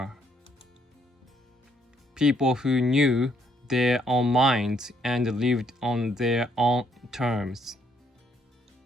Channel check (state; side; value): normal; both; correlation 0.70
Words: People who knew their own minds and lived on their own terms.